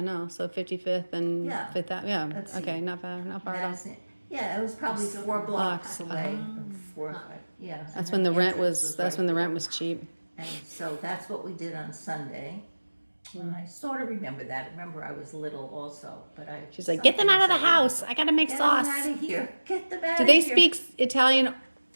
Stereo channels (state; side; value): inverted; both; correlation -1.00